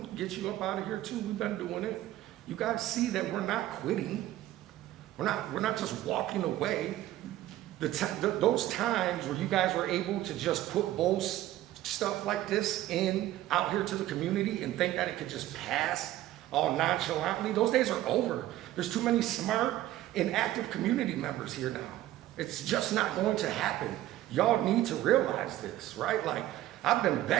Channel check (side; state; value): left; quieter; 14.5 dB